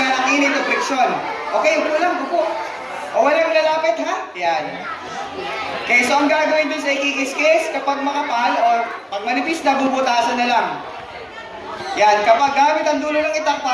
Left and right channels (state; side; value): identical; both; correlation 1.00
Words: ng init o friction. Okay, upo lang, upo. O walang lalapit, ha? Yan. Okay, so ang gagawin dun sa ikikis-kis, kapag makapal o pag manipis na, bubutasan na lang. Yan, kapag gamit ang dulo ng itak